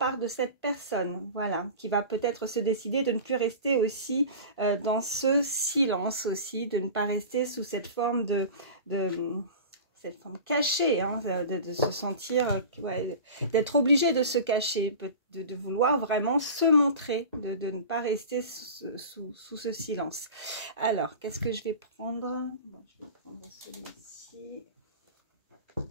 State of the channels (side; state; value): both; inverted; correlation -0.35